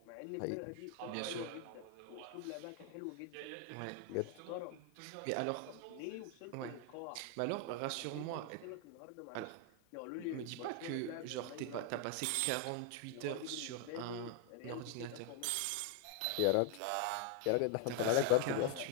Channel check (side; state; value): both; different; correlation 0.00